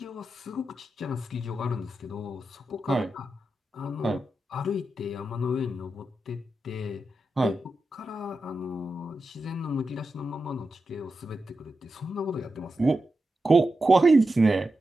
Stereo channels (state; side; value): normal; both; correlation 0.89